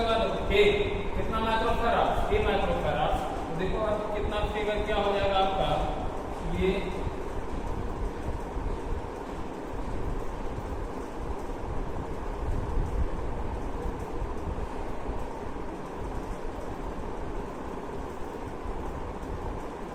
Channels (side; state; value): both; identical; correlation 1.00